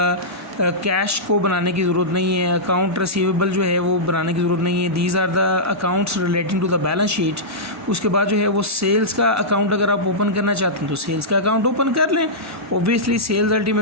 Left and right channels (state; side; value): normal; both; correlation -0.13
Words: कैश को बनाने की ज़रूरत नहीं है, अकाउंट रिसीवेबल जो है वो बनाने की ज़रूरत नहीं है, these are the accounts relating to the balance sheet. उसके बाद जो है वो सेल्स का अकाउंट अगर आप ओपन करना चाहते हैं तो सेल्स का अकाउंट ओपन कर लें। ओब्वियसली सेल्स